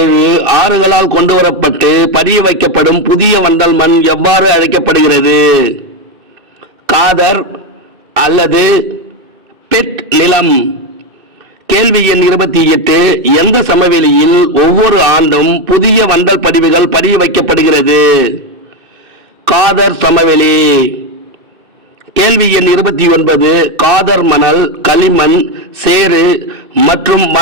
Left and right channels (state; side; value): late; left; 2.6 ms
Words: ஆறுகளால் கொண்டு வரப்பட்டு பதிய வைக்கப்படும் புதிய வண்டல் மண் எவ்வாறு அழைக்கப்படுகிறது? காதர் அல்லது பெட் நிலம். கேள்வி எண் 28. எந்த சமவெளியில் ஒவ்வொரு ஆண்டும் புதிய வண்டல் படிவுகள் பதிய வைக்கப்படுகிறது? காதர் சமவெளி. கேள்வி எண் 29. காதர் மணல், களிமண், சேறு மற்றும்